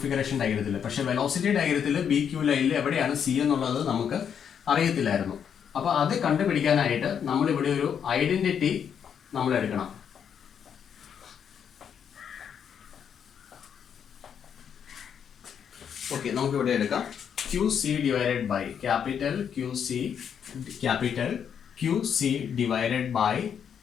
ഡയഗ്രത്തിൽ. പക്ഷേ വെലോസിറ്റി ഡയഗ്രത്തിൽ ബി ക്യൂ ലൈനിൽ എവിടെയാണ് സി എന്നുള്ളത് നമുക്ക് അറിയത്തില്ലായിരുന്നു. അപ്പോൾ അത് കണ്ടുപിടിക്കാനായിട്ട് നമ്മളിവിടെ ഒരു ഐഡന്റിറ്റി നമ്മൾ എടുക്കണം. ഓക്കെ, നമുക്കിവിടെ എടുക്കാം QC divided by capital QC, capital Q QC divided by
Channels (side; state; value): right; quieter; 7.9 dB